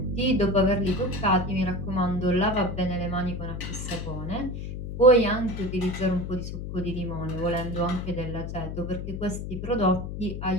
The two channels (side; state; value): left; noise; hum, 6 dB below the sound